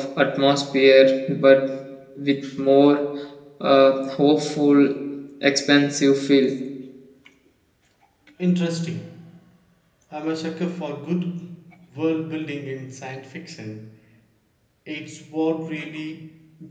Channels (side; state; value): both; identical; correlation 1.00